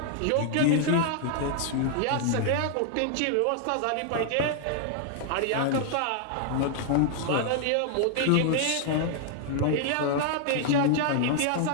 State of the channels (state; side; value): different; both; correlation 0.00